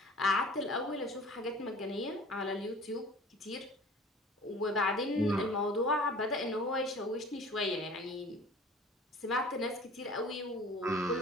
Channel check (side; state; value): both; normal; correlation 0.45